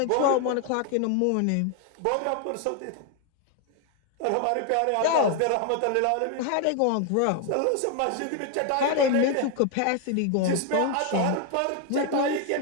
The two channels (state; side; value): different; both; correlation 0.01